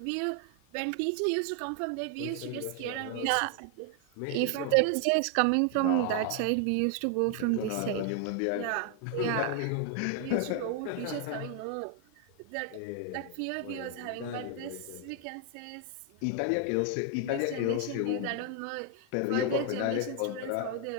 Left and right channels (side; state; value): both; different; correlation 0.00